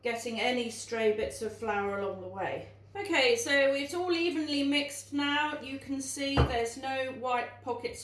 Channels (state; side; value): identical; both; correlation 1.00